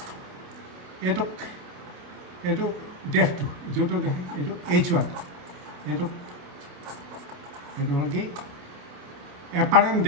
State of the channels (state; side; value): late; left; 28 ms